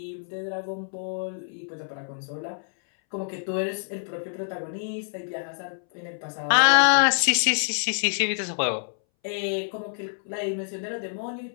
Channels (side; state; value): right; silent; 60 dB below the other